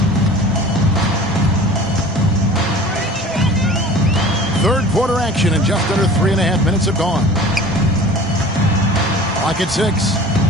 Third quarter action and just under 3.5 minutes have gone. Clock at 6.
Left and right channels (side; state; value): both; normal; correlation 0.42